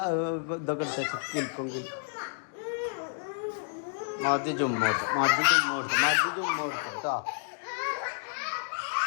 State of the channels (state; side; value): silent; right; digital silence